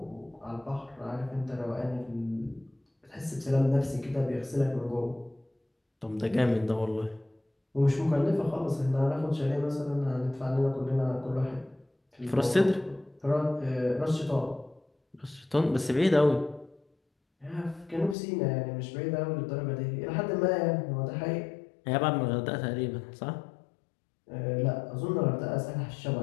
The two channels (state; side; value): drops out; right; at 18.2 s